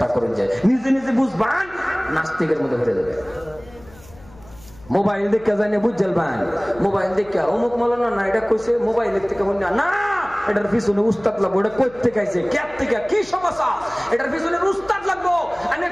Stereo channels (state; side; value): noise; left; hum, 23 dB below the sound